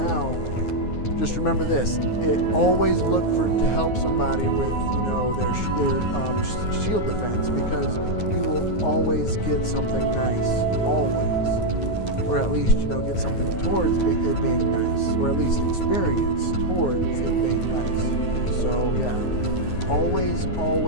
just remember this: always look to help somebody with their shield defense, because you will always get something nice, always. Or at least, get something towards it being nice, or at least experience towards it being nice. So yeah, always,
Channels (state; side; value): late; right; 9.5 ms